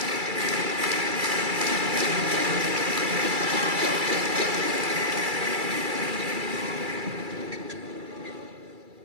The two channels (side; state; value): left; late; 2.3 ms